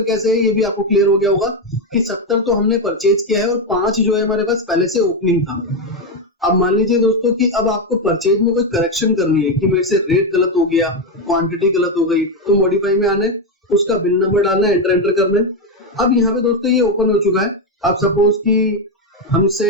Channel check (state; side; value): normal; both; correlation 0.08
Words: कैसे है ये भी आपको क्लियर हो गया होगा कि 70 तो हमने परचेज किया है और 5 जो है हमारे पास पहले से ओपनिंग था। अब मान लीजिए दोस्तों कि अब आपको परचेज में कोई करेक्शन करनी है कि मेरे से रेट गलत हो गया, क्वांटिटी गलत हो गई, तो मॉडिफाई में आना है, उसका बिल नंबर डालना है, एंटर करना है। अब यहाँ पे दोस्तों ये ओपन हो चुका है। अब सपोज कि